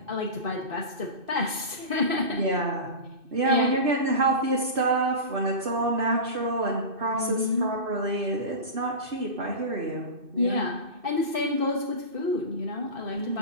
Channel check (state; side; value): late; left; 2.6 ms